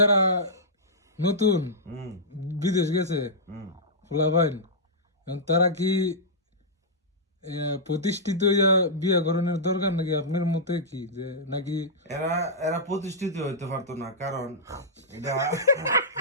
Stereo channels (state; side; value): normal; both; correlation -0.13